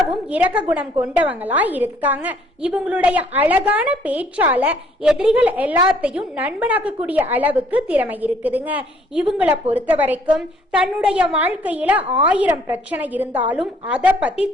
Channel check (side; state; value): both; normal; correlation 0.62